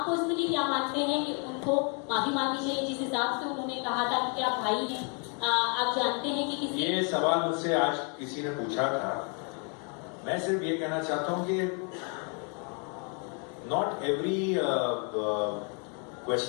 पर्सनली क्या मानते हैं कि उनको माफी मांगनी चाहिए जिस हिसाब से उन्होंने कहा था कि आप भाई हैं? आप जानते हैं कि किसी ये सवाल मुझसे आज किसी ने पूछा था। मैं सिर्फ ये कहना चाहता हूं कि not every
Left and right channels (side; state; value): right; quieter; 38.6 dB